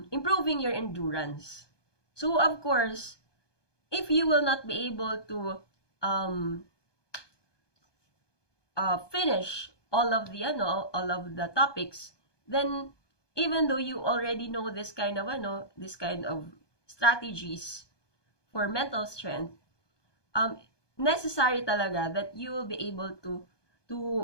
improving your endurance. So of course, if you will not be able to finish all of the topics, then even though you already know this kind of strategies for mental strength, necessary talaga that you will be able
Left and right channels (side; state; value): right; late; 1.2 ms